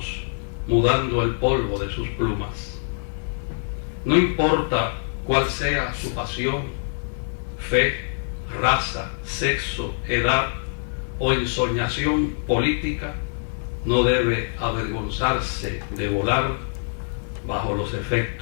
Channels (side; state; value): right; silent; digital silence